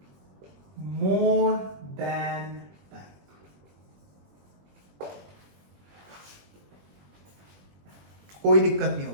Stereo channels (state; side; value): late; left; 21 ms